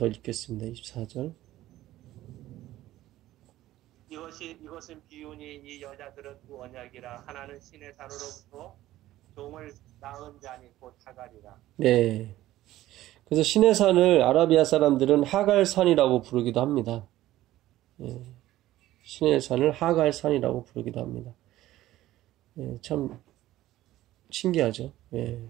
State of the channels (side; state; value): left; quieter; 15.0 dB